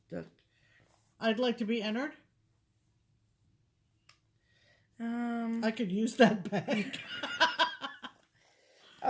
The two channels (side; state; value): both; identical; correlation 1.00